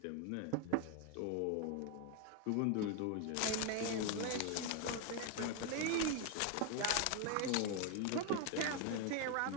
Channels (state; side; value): different; both; correlation 0.01